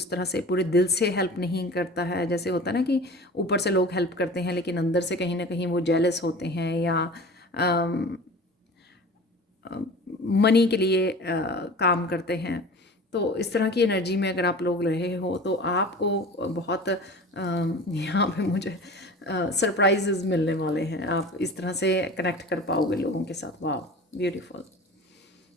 तरह से पूरे दिल से हेल्प नहीं करता है। जैसे होता है ना कि ऊपर से लोग हेल्प करते हैं लेकिन अंदर से कहीं ना कहीं वो जेलस होते हैं या मनी के लिए काम करते हैं। तो इस तरह की एनर्जी में अगर आप लोग रहे हो तो आपको बहुत यहाँ पे मुझे सरप्राइजेस मिलने वाले हैं। आप इस तरह से कनेक्ट कर पाओगे लोगों के साथ। वाह, ब्यूटीफुल।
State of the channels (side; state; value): both; normal; correlation 0.38